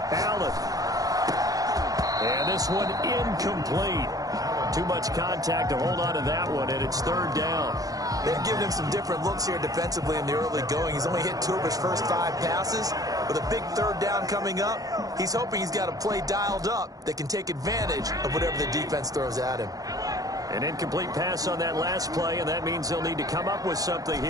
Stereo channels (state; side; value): late; left; 0.17 ms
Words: Allen. And this one incomplete. Too much contact to hold on to that one, and it's 3rd down. They've given him some different looks here defensively in the early going. He's only hit 2 of his first 5 passes. With a big 3rd down coming up, he's hoping he's got a play dialed up that can take advantage of whatever the defense throws at him. An incomplete pass on that last play, and that means they'll need to come up with something